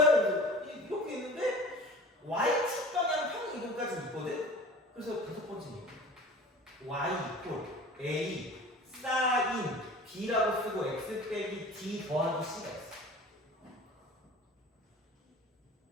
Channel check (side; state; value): both; normal; correlation 0.41